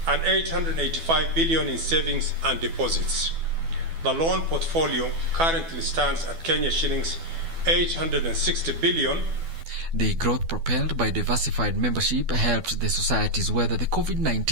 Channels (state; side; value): late; left; 12 ms